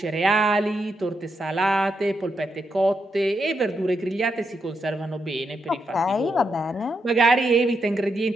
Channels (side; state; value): both; normal; correlation 0.82